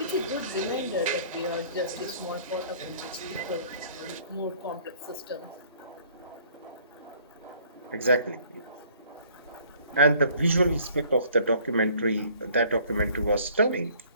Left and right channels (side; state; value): both; inverted; correlation -0.57